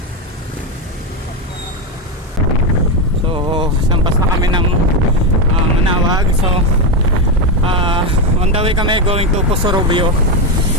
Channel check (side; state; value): both; normal; correlation 0.10